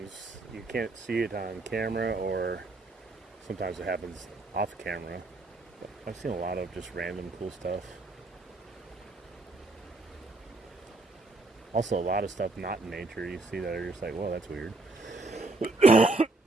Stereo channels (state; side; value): quieter; left; 3.2 dB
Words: you can't see it on camera, or sometimes it happens off camera. But I've seen a lot of just random cool stuff. Also, a lot of stuff not in nature you see that are just like, whoa, that's weird.